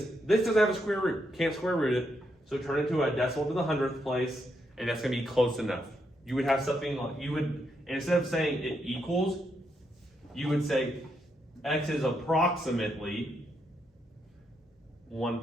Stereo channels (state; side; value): normal; both; correlation 0.79